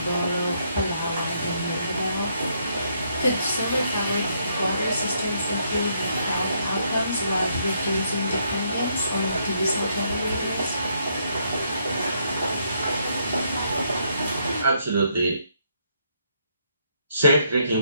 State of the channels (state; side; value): inverted; both; correlation -0.73